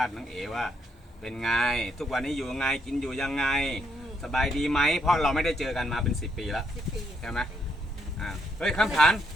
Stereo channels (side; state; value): both; normal; correlation 0.75